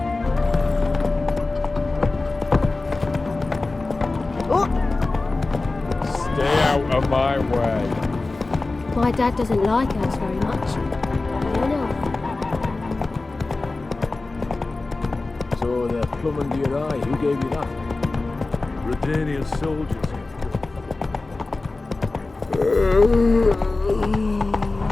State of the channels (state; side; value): quieter; right; 3.3 dB